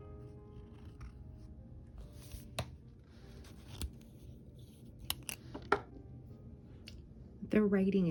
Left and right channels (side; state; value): both; identical; correlation 1.00